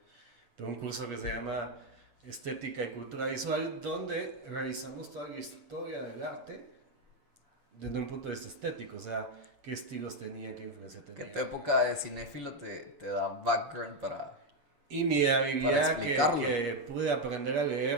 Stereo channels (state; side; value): late; left; 7.0 ms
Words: tengo un curso que se llama Estética y Cultura Visual, donde revisamos toda la historia del arte desde un punto de vista estético, o sea, qué estilos tenía, qué influencia tenía. Que tu época de cinéfilo te da background para... Y mi habilidad explicarlo. que pude aprender a